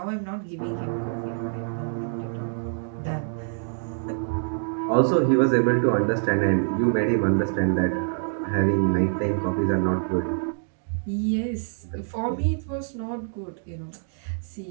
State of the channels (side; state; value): left; silent; digital silence